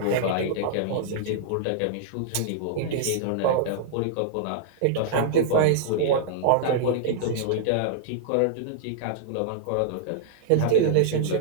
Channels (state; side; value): different; both; correlation -0.02